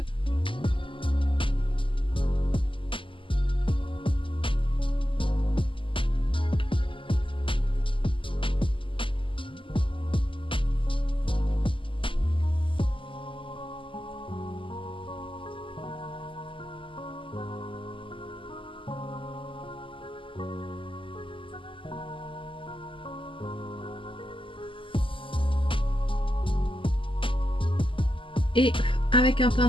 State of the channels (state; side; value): late; right; 0.25 ms